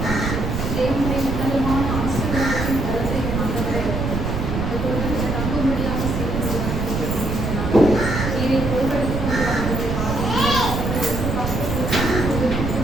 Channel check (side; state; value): right; noise; rumble, 2 dB below the sound